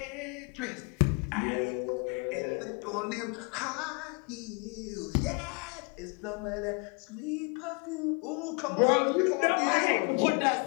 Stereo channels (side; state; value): right; quieter; 34.5 dB